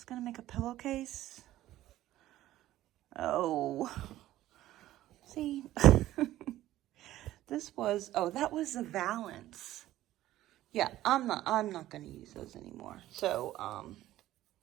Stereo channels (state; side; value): quieter; left; 14.5 dB